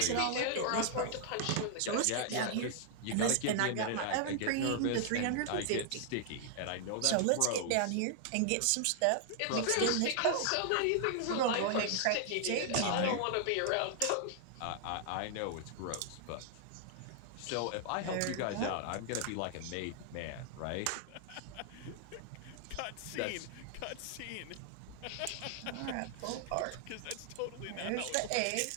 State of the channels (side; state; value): both; different; correlation 0.00